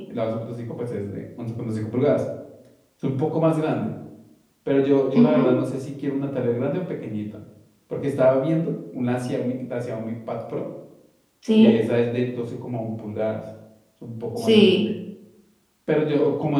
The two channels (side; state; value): both; identical; correlation 1.00